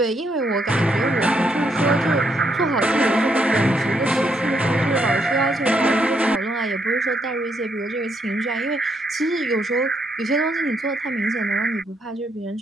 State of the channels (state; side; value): normal; both; correlation 0.76